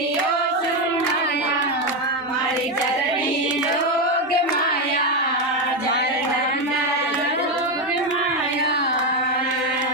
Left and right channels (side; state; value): both; normal; correlation 0.09